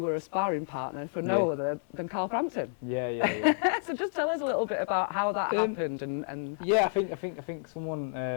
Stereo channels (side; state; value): right; silent; digital silence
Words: a sparring partner for no other than Carl Frampton. Yeah. So just tell us a little bit about how that happened and. Yeah, I think